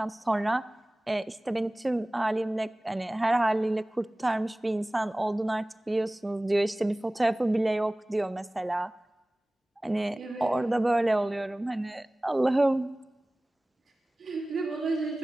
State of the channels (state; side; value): normal; both; correlation 0.98